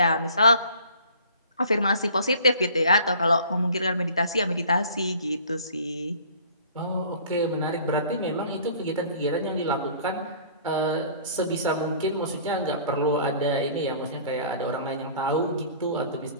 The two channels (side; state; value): both; inverted; correlation -0.50